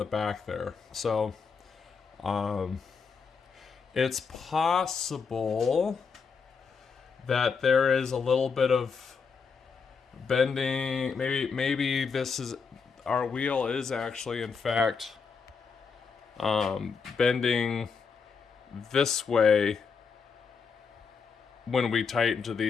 back there. So it's possible that there is a little bit of bending. Maybe this is, our wheel is actually in fact bending this way when we tighten to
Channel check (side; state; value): right; quieter; 5.5 dB